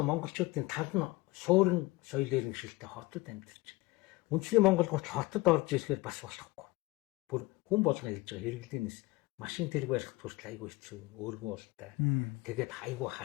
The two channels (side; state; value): right; quieter; 21.4 dB